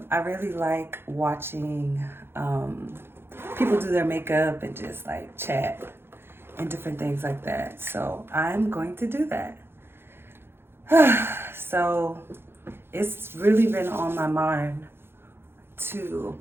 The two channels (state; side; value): late; left; 0.11 ms